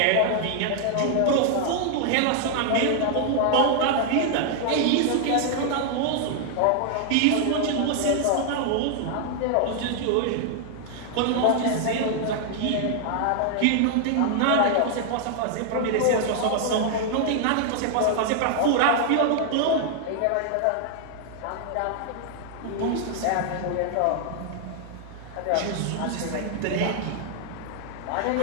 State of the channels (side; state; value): both; different; correlation 0.00